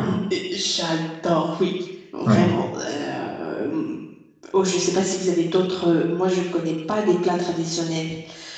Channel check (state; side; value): identical; both; correlation 1.00